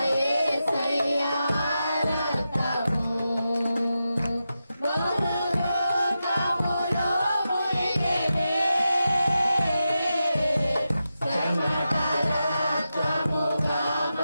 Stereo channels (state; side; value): inverted; both; correlation -0.90